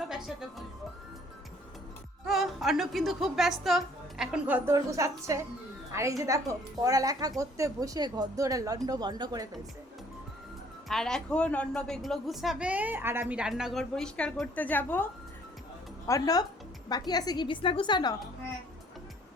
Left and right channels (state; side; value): normal; both; correlation 0.59